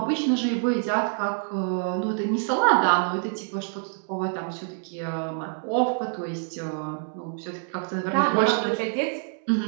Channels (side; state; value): left; silent; 59 dB below the other